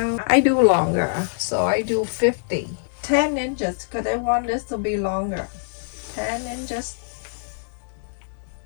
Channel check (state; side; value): silent; right; digital silence